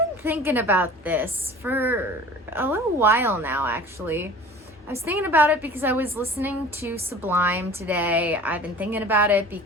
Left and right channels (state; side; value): normal; both; correlation 0.43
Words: thinking about this for a little while now, actually. I was thinking about it because I was listening to Sublime today. I've been thinking about it